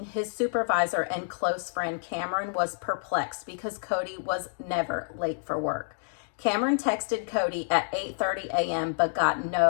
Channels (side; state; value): right; silent; digital silence